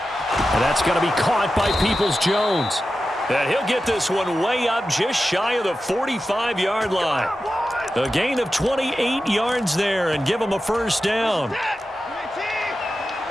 And that's going to be caught by Peoples-Jones. And he'll get this one way up just shy of the 45-yard line. A gain of 28 yards there and give him a first down.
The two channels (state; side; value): normal; both; correlation 0.92